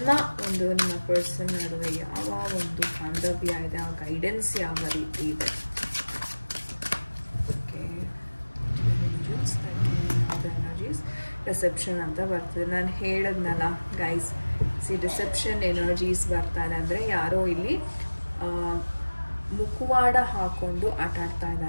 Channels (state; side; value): inverted; both; correlation -1.00